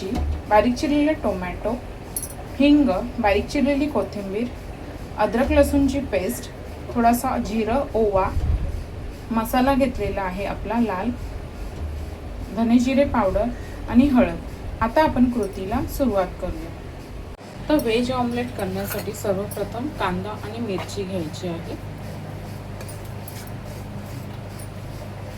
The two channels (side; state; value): both; identical; correlation 1.00